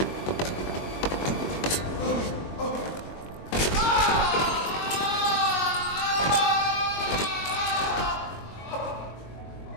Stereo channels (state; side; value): late; right; 22 ms